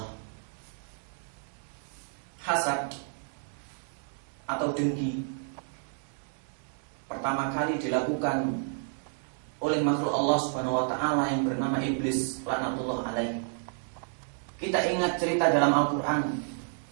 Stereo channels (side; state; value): left; silent; 57 dB below the other